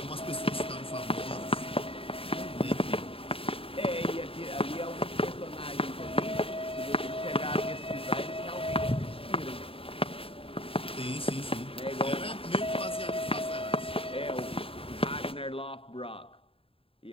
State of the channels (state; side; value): late; right; 0.27 ms